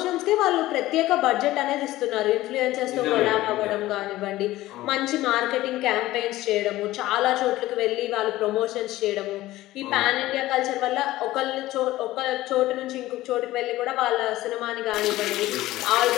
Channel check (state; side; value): quieter; right; 16.5 dB